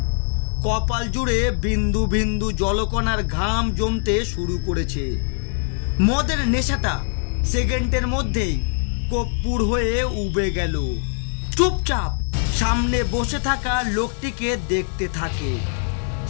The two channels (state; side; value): silent; right; 64 dB below the other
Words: কপাল জুড়ে বিন্দু বিন্দু জলকণার ঘাম জমতে শুরু করেছে। মদের নেশাটা সেকেন্ডের মধ্যেই কর্পূর হয়ে উবে গেল। চুপচাপ সামনে বসে থাকা লোকটিকে দেখতে থাকে,